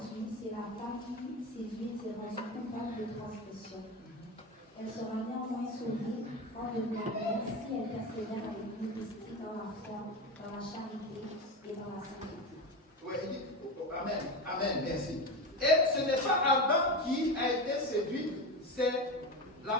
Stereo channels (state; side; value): normal; both; correlation 0.20